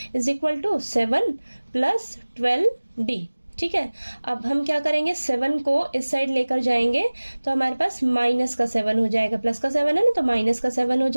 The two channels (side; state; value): both; inverted; correlation -1.00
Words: is equal to 7 plus 12d। ठीक है, अब हम क्या करेंगे, 7 को इस साइड लेकर जाएंगे तो हमारे पास माइनस का 7 हो जाएगा, प्लस का 7 है ना, तो माइनस का 7 हो